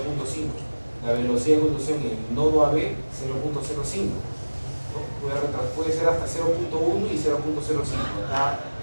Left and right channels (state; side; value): inverted; both; correlation -1.00